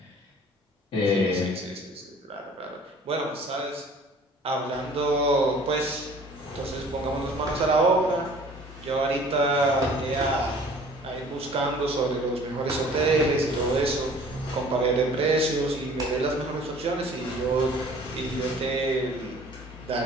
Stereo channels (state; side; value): normal; both; correlation 0.50